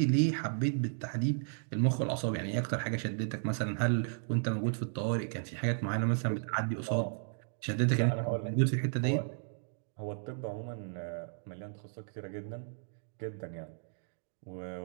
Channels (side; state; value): left; silent; digital silence